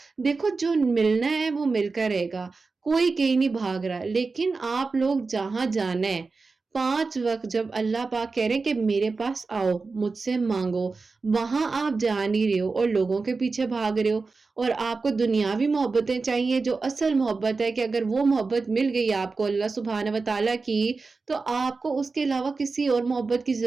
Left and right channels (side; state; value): left; quieter; 4.1 dB